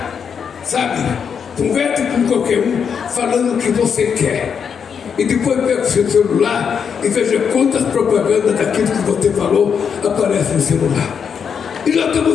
sabe, converse com qualquer um falando o que você quer. E depois pega o seu celular e veja quantas propagandas daquilo que você falou aparecem no celular. E nós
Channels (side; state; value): right; quieter; 6.9 dB